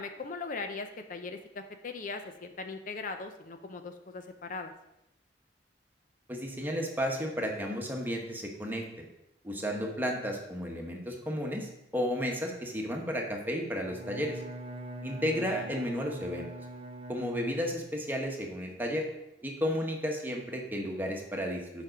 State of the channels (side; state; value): both; normal; correlation 0.57